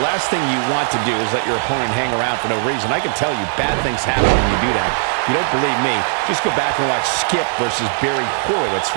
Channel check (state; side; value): silent; left; digital silence